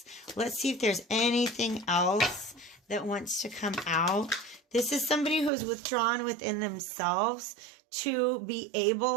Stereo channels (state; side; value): drops out; left; at 5.5 s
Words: Let's see if there's anything else that wants to come out. This is somebody who's withdrawn within themselves to be